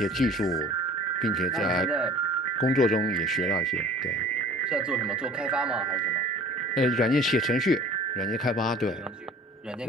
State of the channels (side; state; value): both; normal; correlation 0.46